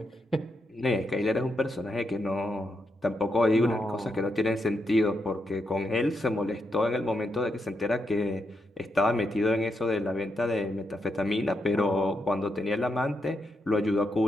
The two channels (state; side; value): normal; both; correlation 0.82